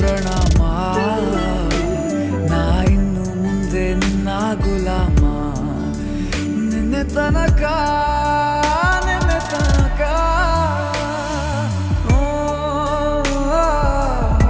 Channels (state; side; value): identical; both; correlation 1.00